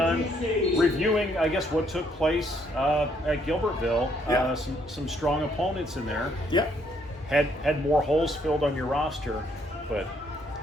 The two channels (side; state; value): both; normal; correlation 0.70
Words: Reviewing, I guess, what took place at Gilbertville. Yeah. Some strong opponents in there. Yeah. Had more holes filled on your roster, but